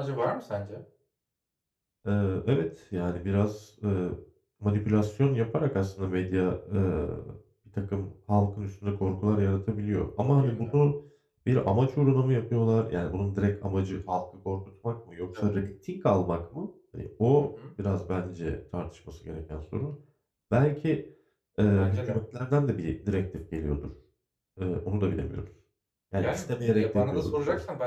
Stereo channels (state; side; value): identical; both; correlation 1.00